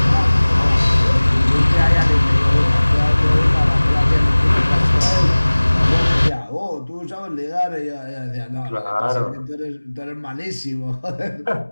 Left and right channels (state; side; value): inverted; both; correlation -1.00